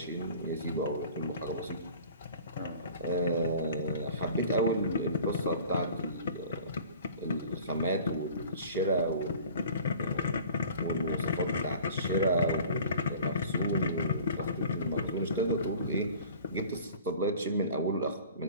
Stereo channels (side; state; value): both; inverted; correlation -0.45